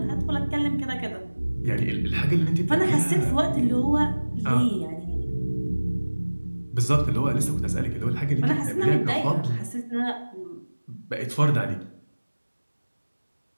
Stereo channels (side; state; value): both; inverted; correlation -1.00